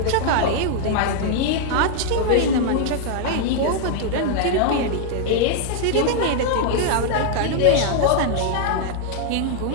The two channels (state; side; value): different; both; correlation 0.00